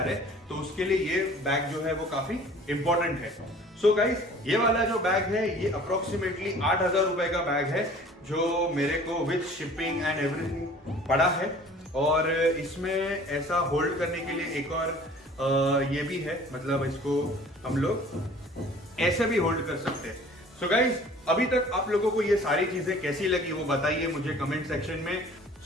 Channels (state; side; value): normal; both; correlation 0.49